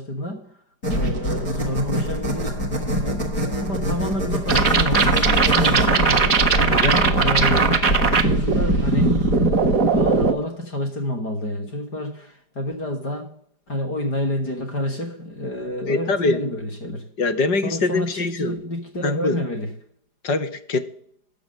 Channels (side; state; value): right; late; 4.9 ms